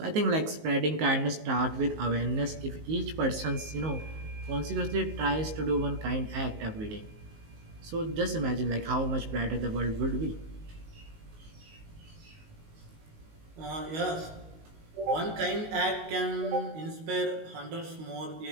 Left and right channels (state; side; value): late; left; 19 ms